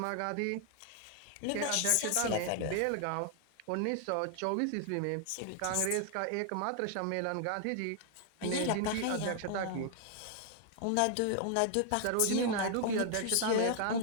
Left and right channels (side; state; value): both; different; correlation 0.00